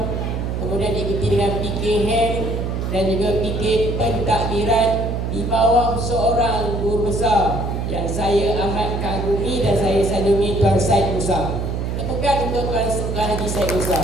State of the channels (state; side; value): noise; right; hum, 2 dB below the sound